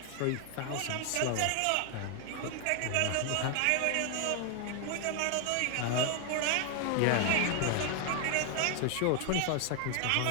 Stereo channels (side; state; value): both; different; correlation 0.00